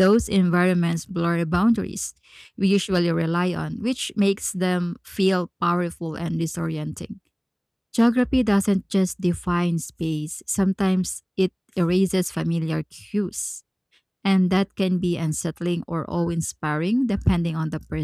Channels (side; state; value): both; identical; correlation 1.00